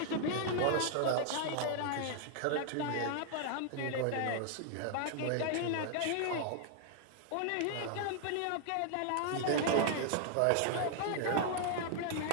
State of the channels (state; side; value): different; both; correlation 0.00